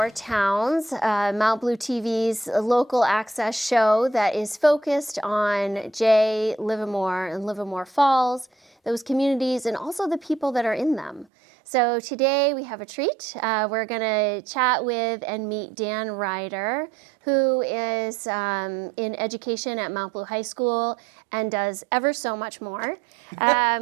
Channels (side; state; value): left; drops out; at 11.2 s